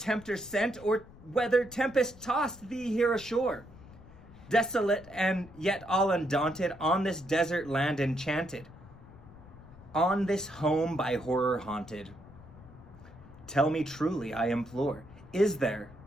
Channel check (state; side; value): noise; left; rumble, 20 dB below the sound